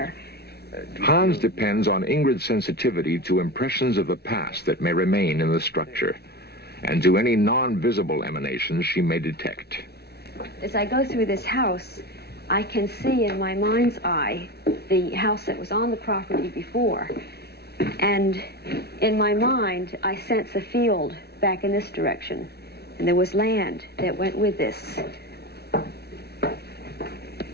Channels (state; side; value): late; right; 0.47 ms